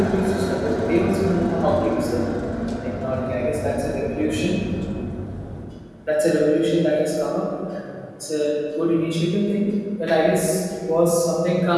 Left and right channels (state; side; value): identical; both; correlation 1.00